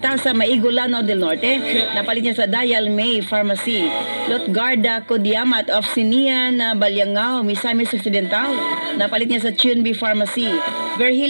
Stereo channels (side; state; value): both; inverted; correlation -1.00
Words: Maigulano del Norte, napalit niya sa Dayal May Pharmacy. Lotgarda Kodiamat of Sinian, Balyangao, Misamis Occidental, napalit niya sa Chunbi Pharmacy.